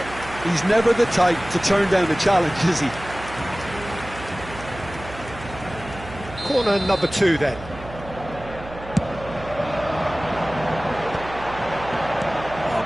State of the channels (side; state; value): right; noise; hum, 14 dB below the sound